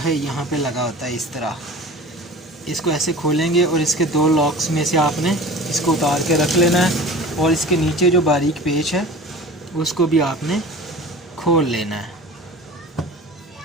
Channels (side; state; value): both; normal; correlation 0.39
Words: यहाँ पे लगा होता है इस तरह। इसको ऐसे खोलेंगे और इसके 2 लॉक्स में से आपने इसको उतार के रख लेना है, और इसके नीचे जो बारीक पेच है उसको भी आपने खोल लेना है।